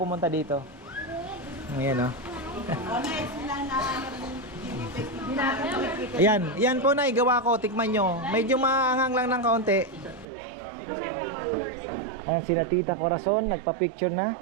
dito. Ayan yan po na igawa ko, tikman nyo. Medyo maanghang lang ng kaunti. Ayan, sina Tita Corazon, nagpa-picture na.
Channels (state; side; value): drops out; left; at 10.2 s